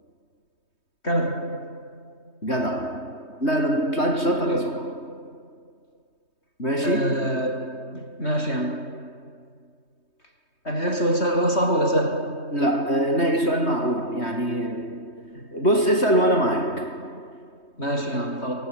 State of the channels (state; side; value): late; right; 3.2 ms